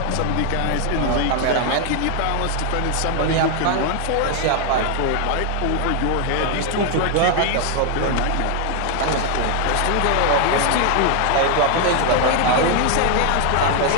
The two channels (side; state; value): both; different; correlation 0.00